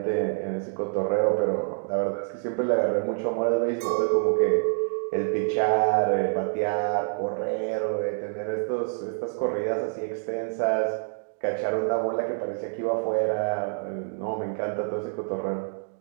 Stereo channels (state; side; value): silent; left; digital silence